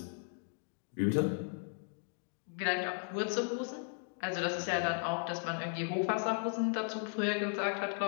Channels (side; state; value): right; silent; 54 dB below the other